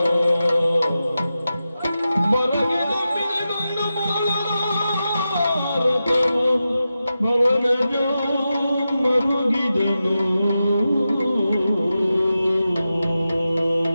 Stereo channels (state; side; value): inverted; both; correlation -0.91